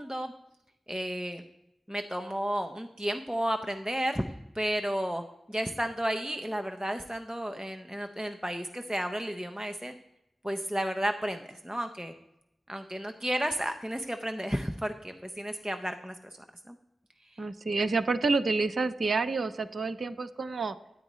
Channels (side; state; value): both; normal; correlation 0.93